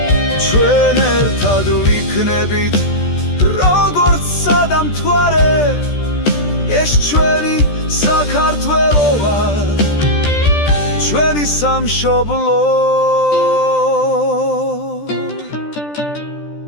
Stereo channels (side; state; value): right; late; 14 ms